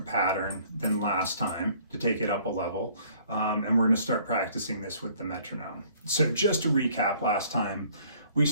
pattern than last time to take it up a level, and we're going to start practicing this with the metronome. So just to recap, last time we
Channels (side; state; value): both; inverted; correlation -0.58